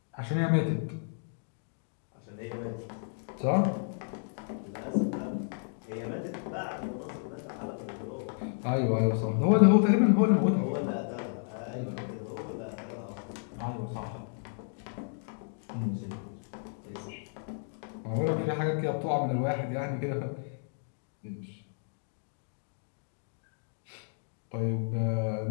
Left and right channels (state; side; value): silent; right; digital silence